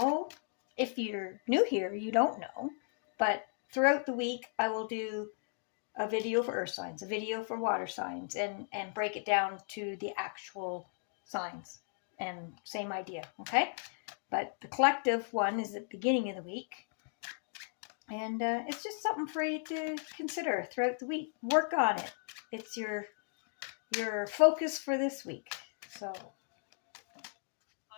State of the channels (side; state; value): right; silent; 54 dB below the other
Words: if you're new here, you don't know, but throughout the week, I will do a video for earth signs, a video for water signs, and break it down to the actual signs. And same idea, okay? But the collective one is at the beginning of the week. And it's just something for you to consider throughout the week. Work on it. It's your focus for this week. So,